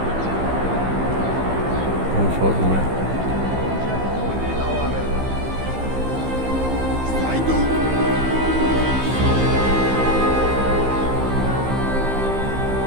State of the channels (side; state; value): left; late; 15 ms